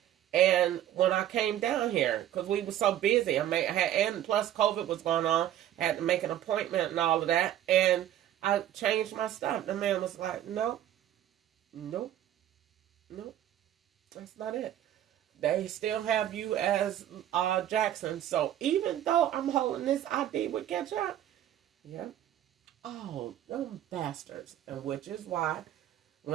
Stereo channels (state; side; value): quieter; left; 11.8 dB